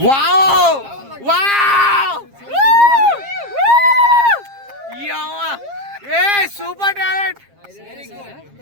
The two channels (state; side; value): late; left; 7.4 ms